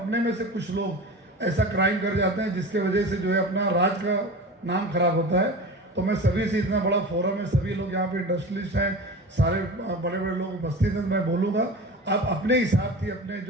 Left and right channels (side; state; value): both; normal; correlation 0.32